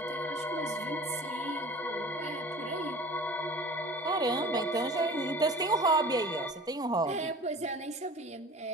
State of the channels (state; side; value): normal; both; correlation 0.42